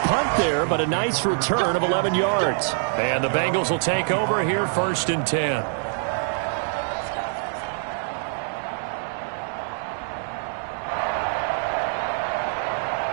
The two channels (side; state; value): left; silent; 62 dB below the other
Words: punt there, but a nice return of 11 yards. And the Bengals will take over here 1st and 10.